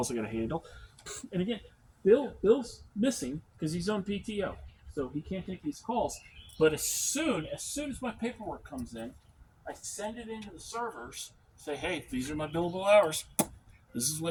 I got to handle. And again, Bill's missing because he's on PTO, so he can't take these calls. But as soon as my paperwork comes in, I send it into the servers. Say, hey, these are my billable hours. This is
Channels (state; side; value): identical; both; correlation 1.00